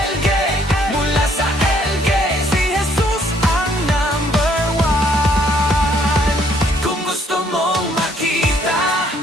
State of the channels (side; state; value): both; normal; correlation 0.65